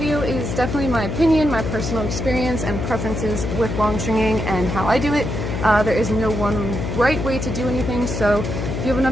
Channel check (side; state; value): left; noise; hum, 3 dB below the sound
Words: is definitely my opinion, my personal experience and preferences with longstringing and how I do it. There is no one right way to do anything, so if you have